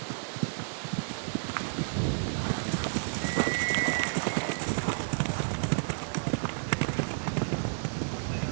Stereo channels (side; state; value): left; silent; 57 dB below the other